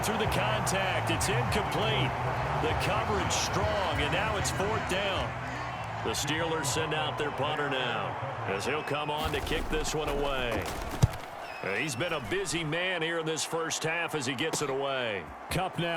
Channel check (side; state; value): both; identical; correlation 1.00